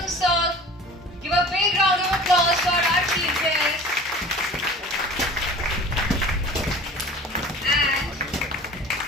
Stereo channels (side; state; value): both; normal; correlation 0.42